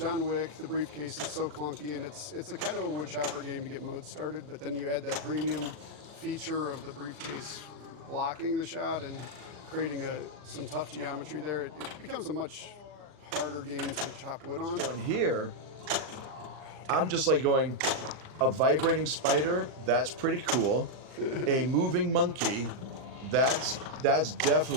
Wick, the briefcase is so clunky, and it's a kind of a wood chopper game to get mode started, but then you add that premium feature of the briefcase blocking the shot and creating some tough geometry there. It becomes a much harder game to chop wood on. So in here, I'm just like going, a vibrating spider, that's pretty cool. A moving monkey, that's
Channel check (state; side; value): late; left; 40 ms